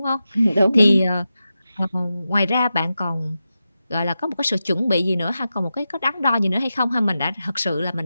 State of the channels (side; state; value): both; inverted; correlation -0.91